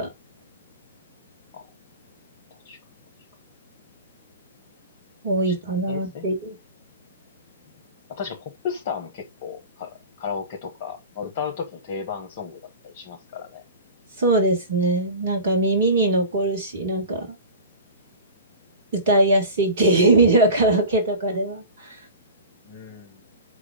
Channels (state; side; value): inverted; both; correlation -0.34